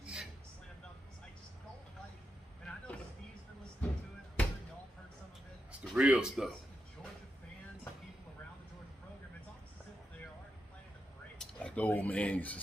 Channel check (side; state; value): both; normal; correlation 0.87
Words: It's the real stuff. Like the old man used to